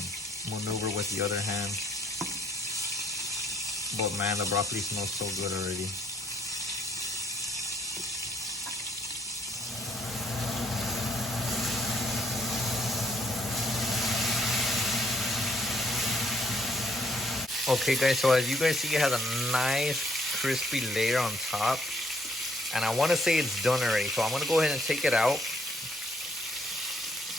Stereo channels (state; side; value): normal; both; correlation 0.67